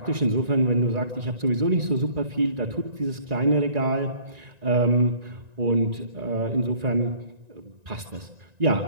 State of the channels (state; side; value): late; left; 1.9 ms